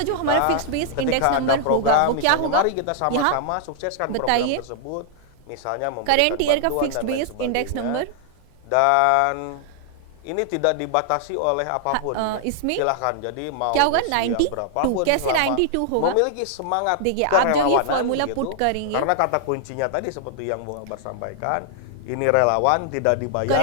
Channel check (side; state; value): both; different; correlation -0.01